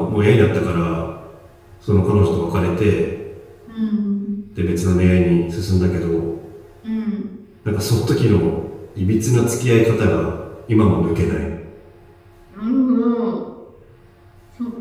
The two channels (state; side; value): identical; both; correlation 1.00